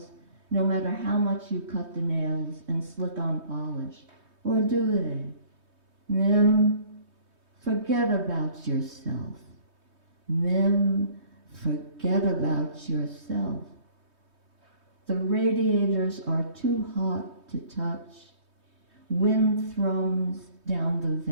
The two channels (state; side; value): late; left; 3.2 ms